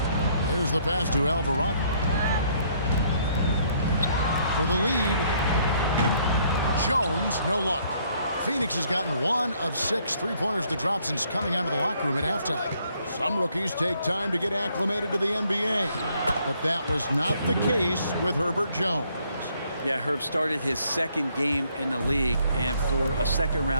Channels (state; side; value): inverted; both; correlation -0.67